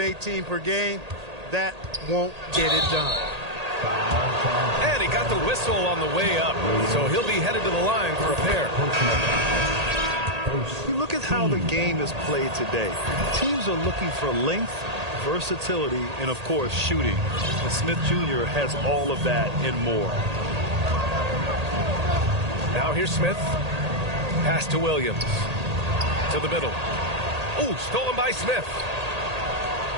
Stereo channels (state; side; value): late; left; 1.8 ms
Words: per game. That won't get it done. And he got the whistle on the way up, so he'll be headed to the line for a pair. You look at how the game is played today. Teams are looking for length, versatility, and, of course, shooting. And Smith Jr. has all of that and more. Now here's Smith. Pass to Williams. To the middle. Ooh, stolen by Smith.